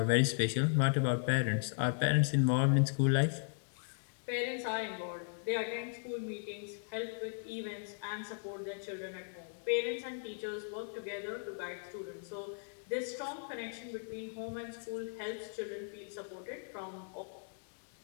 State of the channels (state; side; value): silent; right; digital silence